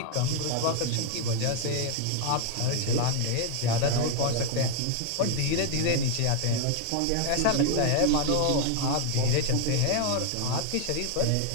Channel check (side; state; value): both; different; correlation 0.00